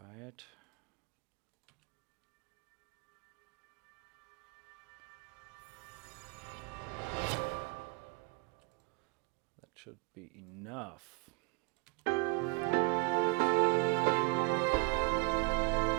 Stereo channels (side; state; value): left; quieter; 28.9 dB